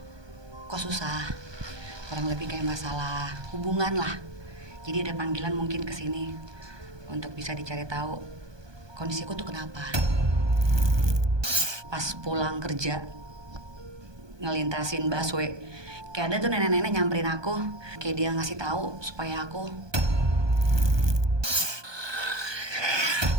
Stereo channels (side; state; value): left; late; 1.2 ms